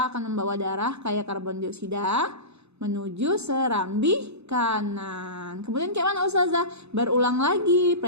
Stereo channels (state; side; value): late; left; 0.80 ms